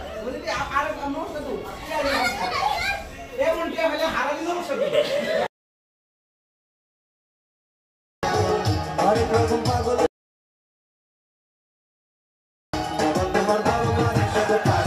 বলে দিয়া আর নমস্কার তো এমন টিয়া হলে হারালি নমস্কার আরে প্রথম পাগল তোমার বাবা মায়ের সাথে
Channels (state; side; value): identical; both; correlation 1.00